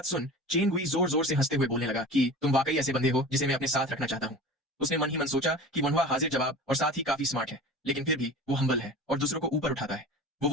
सुन चेन गुई जोर जोर से हंसते हुए बोलने लगा कि तुम वाकई ऐसे बंदे हो जिसे मैं अपने साथ रखना चाहता हूँ। उसने मन ही मन सोचा कि वोनवा हाजिर जवाब और साथ ही काफी स्मार्ट है, लेकिन फिर भी वो हम्बल है और दूसरों को ऊपर उठाता है। वो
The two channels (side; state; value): both; normal; correlation 0.35